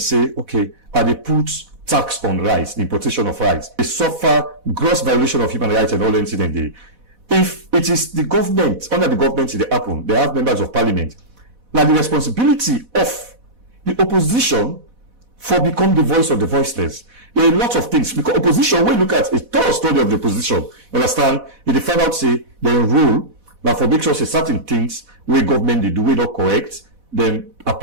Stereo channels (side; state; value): left; late; 4.1 ms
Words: okay, are they put tax on rice, the importation of rice? They suffer gross violation of human rights and all incident there. If it is the government, under the government they happen, they have members of parliament. Now the responsibility of the opposition for become the voice of the voiceless. There are a lot of things, because opposition, when you look at a thorough study of the opposition, understand, if they find out, say, their rule, now for make sure say certain things where government they do we not correct, then